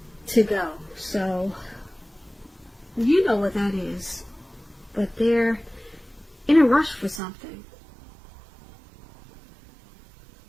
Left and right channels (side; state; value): left; drops out; at 7.2 s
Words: to go. So you know what that is, but they're in a rush for something.